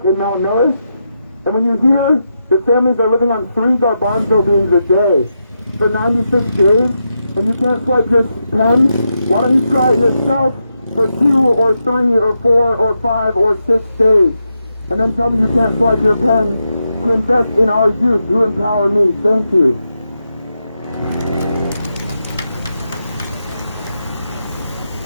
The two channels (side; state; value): both; inverted; correlation -0.85